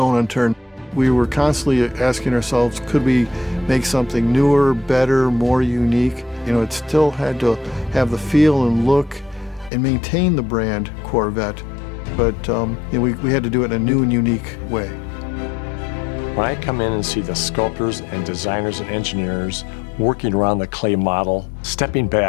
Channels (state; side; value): drops out; right; at 9.7 s